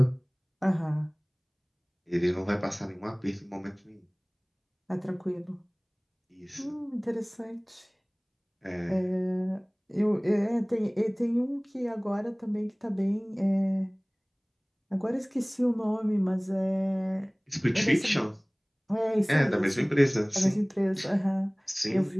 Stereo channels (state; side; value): identical; both; correlation 1.00